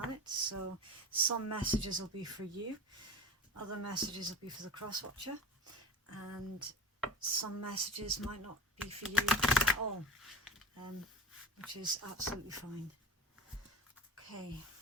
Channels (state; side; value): normal; both; correlation 0.32